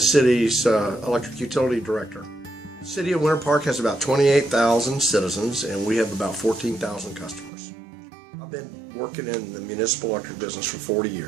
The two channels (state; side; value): drops out; left; at 7.5 s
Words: electric utility director. The city of Winter Park has about 28,000 citizens and we have about 14,000 customers. I've been working in the municipal electric business for 40